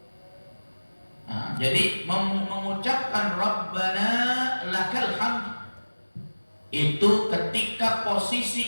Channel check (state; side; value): inverted; both; correlation -1.00